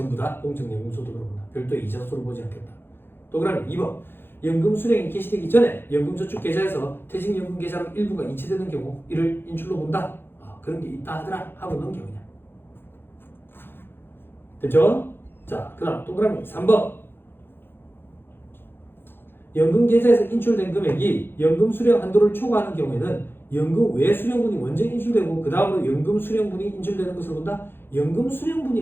다 공적연금소득으로 본다. 별도의 이자소를 보지 않겠다. 동그라미 2번 연금 수령이 개시되기 전에 연금저축 계좌에서 퇴직연금 계좌로 일부가 이체되는 경우 이를 인출로 본다. 그런 게 있다 하더라 하고 넘겨 그냥. 됐죠? 자, 그 다음 동그라미 3번 연금 계좌에서 인출된 금액이 연금 수령 한도를 초과하는 경우에는 연금 외 수령분이 먼저 인출되고 그 다음으로 연금 수령분이 인출되는 것을 본다. 연금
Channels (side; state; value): right; late; 0.10 ms